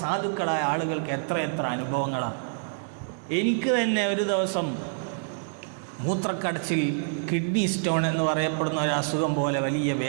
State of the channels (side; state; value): left; silent; digital silence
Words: സാധുക്കളായ ആളുകൾക്ക് എത്ര അനുഭവങ്ങളാണ്. എനിക്ക് തന്നെ ഒരു ദിവസം മൂത്രക്കടച്ചിൽ, കിഡ്നി സ്റ്റോൺ എന്ന് പറയപ്പെടുന്ന ഒരു അസുഖം പോലെ വലിയ